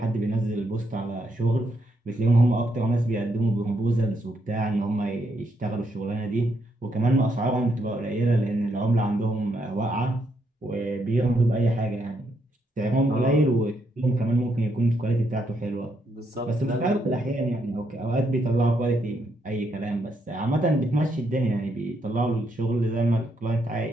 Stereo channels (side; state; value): both; normal; correlation 0.77